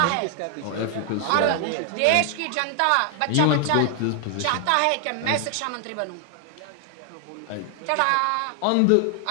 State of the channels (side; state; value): both; different; correlation 0.00